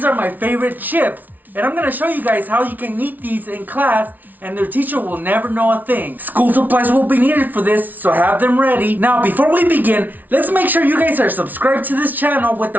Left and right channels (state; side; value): late; left; 0.081 ms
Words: are my favorite chips, and I'm gonna show you guys how you can eat these in class and their teacher will never know a thing. School supplies will be needed for this, so have them ready. Now, before we begin, let's make sure you guys are subscribed to this channel with